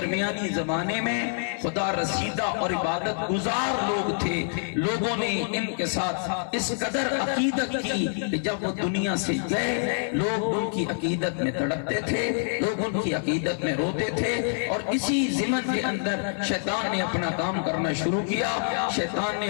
زمانے میں خدا رسیدہ اور عبادت گزار لوگ تھے۔ لوگوں نے ان کے ساتھ اس قدر عقیدت کی کہ جب وہ دنیا سے گئے لوگ ان کی عقیدت میں تڑپتے تھے، لوگ ان کی عقیدت میں روتے تھے، اور اسی ضمن کے اندر شیطان نے اپنا کام کرنا شروع کیا۔ شیطان نے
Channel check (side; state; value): right; silent; digital silence